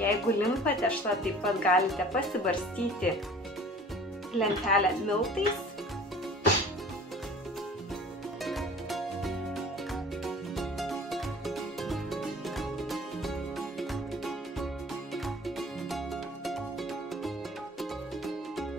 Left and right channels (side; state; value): both; normal; correlation 0.46